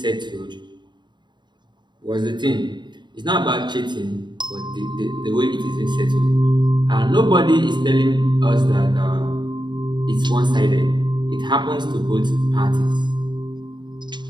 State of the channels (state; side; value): late; left; 0.22 ms